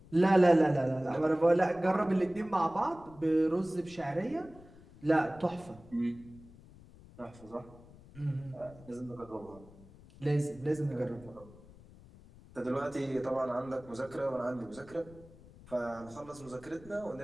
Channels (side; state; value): left; noise; rumble, 21 dB below the sound